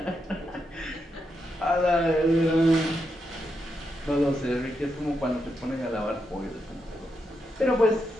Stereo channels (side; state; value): both; normal; correlation 0.83